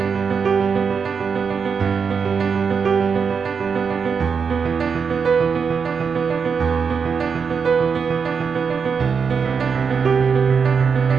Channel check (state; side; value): quieter; left; 6.0 dB